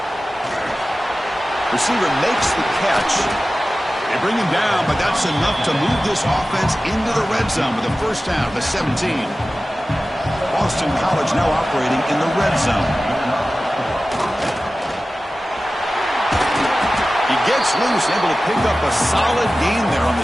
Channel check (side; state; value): both; normal; correlation 0.96